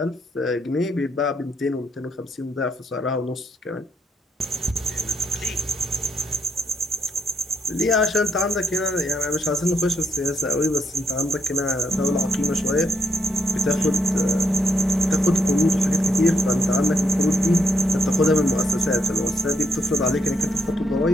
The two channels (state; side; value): normal; both; correlation 0.76